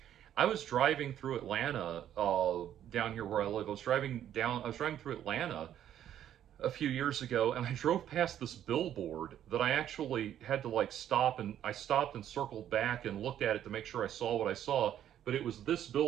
was driving through Atlanta, down here where I live. I was driving through Atlanta a few years ago, and I drove past this billboard that I actually had to like stop, and I stopped and circled back and looked at it to make sure I saw what I saw. But it was this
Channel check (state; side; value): quieter; left; 10.8 dB